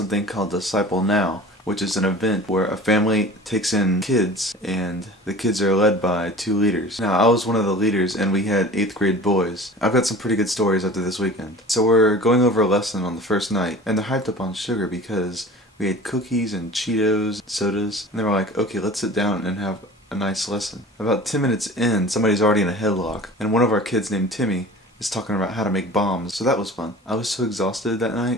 called Disciple Now, which is an event where a family takes in kids and the kids are led by 2 leaders. Now I was one of the leaders and we had 8th grade boys. I've got some pretty good stories after this weekend. So we're going over a lesson on the first night and they're hyped up on sugar because we had cookies and Cheetos, sodas, and they were like, okay, let's sit down and have a nice lesson. About 10 minutes in, somebody's already in a headlock and one of our kids named Timmy is talking about how to make bombs, so that was fun. I was so exhausted that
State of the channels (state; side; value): normal; both; correlation 0.41